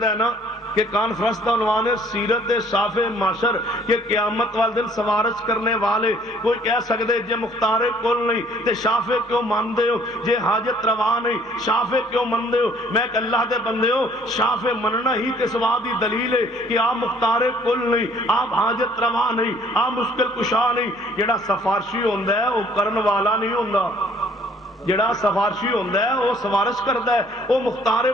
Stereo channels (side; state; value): both; normal; correlation 0.58